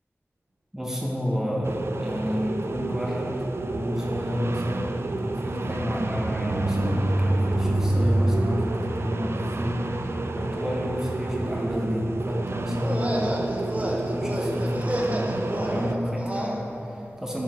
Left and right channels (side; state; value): both; normal; correlation 0.94